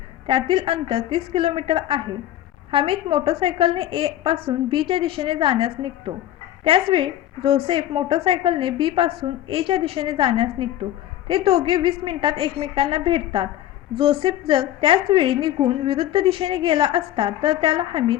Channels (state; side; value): quieter; right; 12.8 dB